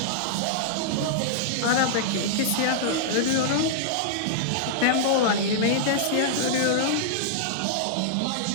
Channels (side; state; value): both; different; correlation -0.02